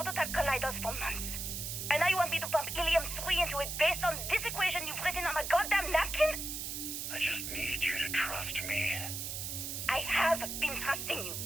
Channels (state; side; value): noise; right; hiss, 5 dB below the sound